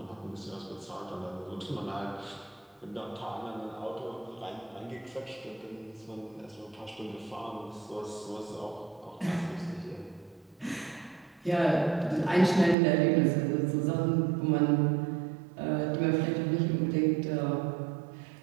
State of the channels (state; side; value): drops out; left; at 12.8 s